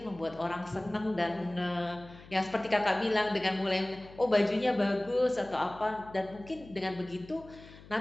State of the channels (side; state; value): left; noise; hum, 20 dB below the sound